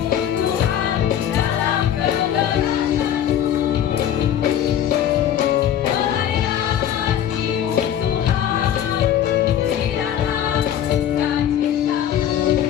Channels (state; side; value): quieter; right; 10.2 dB